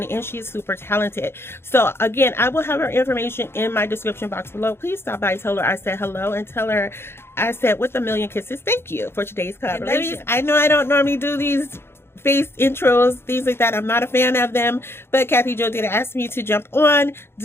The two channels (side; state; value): right; late; 0.12 ms